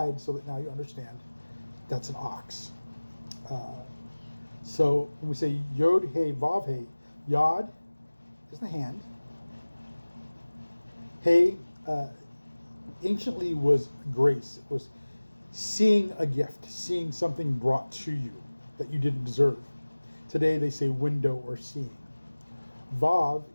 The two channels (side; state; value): both; inverted; correlation -1.00